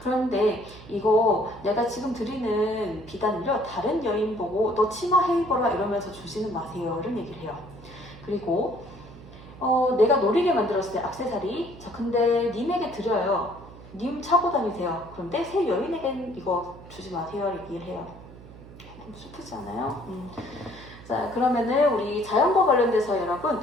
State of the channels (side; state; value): right; noise; hum, 18 dB below the sound